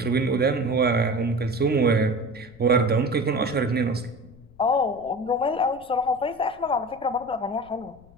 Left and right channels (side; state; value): left; noise; rumble, 26 dB below the sound